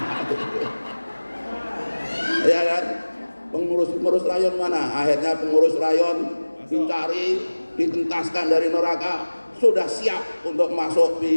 Ya kan? Pengurus-pengurus rayon mana? Akhirnya pengurus rayon dicari, ditentaskan dari neraka, sudah siap untuk masuk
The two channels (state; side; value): inverted; both; correlation -1.00